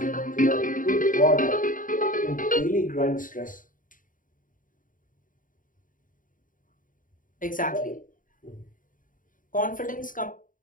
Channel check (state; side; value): late; right; 0.39 ms